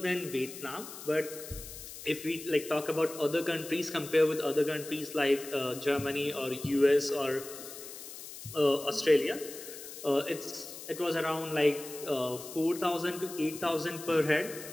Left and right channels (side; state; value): left; noise; hiss, 12 dB below the sound